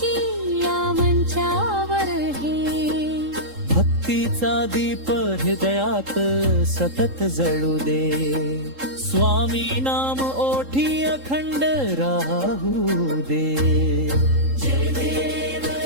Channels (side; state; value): left; late; 3.7 ms